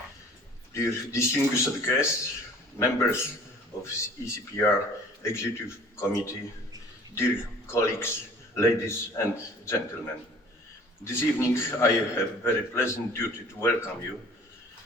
dear distinguished guests, members of ECPR Executive Committee, dear colleagues, ladies and gentlemen. This evening I have a very pleasant duty to welcome you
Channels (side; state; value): both; normal; correlation 0.50